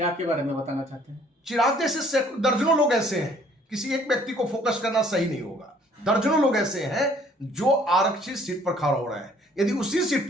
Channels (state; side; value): normal; both; correlation 0.59